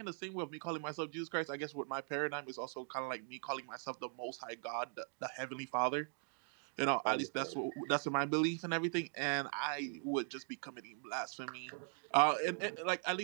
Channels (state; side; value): silent; left; 51 dB below the other